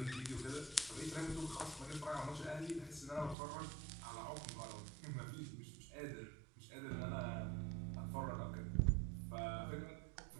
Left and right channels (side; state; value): left; drops out; at 3.4 s